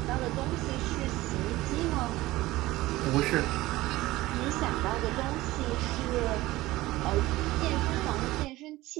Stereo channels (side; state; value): left; quieter; 18.1 dB